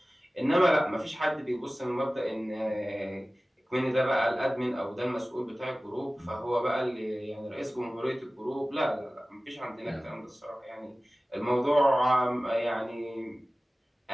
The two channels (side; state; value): both; normal; correlation 0.97